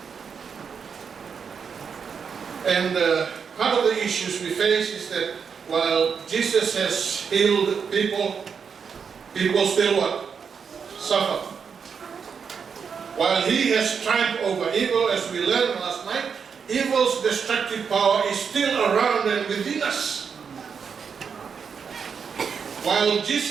And part of the issues we face is that while Jesus has healed people, people still what? Suffer. While he has triumphed over evil, as we learned last night, evil's destructive power is still around and within us. While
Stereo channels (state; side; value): quieter; left; 6.3 dB